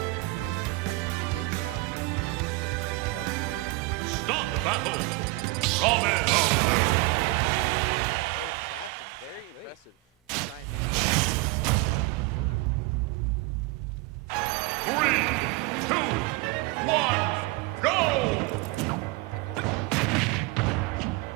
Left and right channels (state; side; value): quieter; left; 21.8 dB